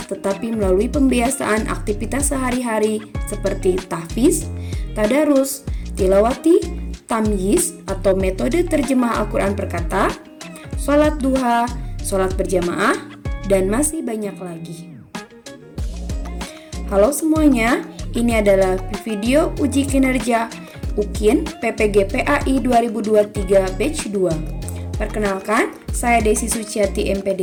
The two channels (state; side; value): identical; both; correlation 1.00